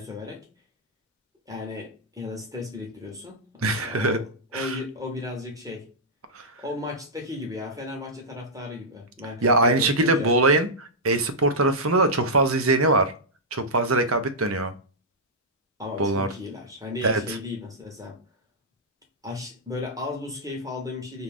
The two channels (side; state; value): both; normal; correlation -0.09